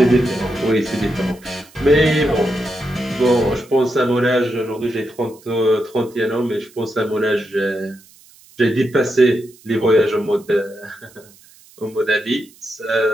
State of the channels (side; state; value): right; noise; hiss, 26 dB below the sound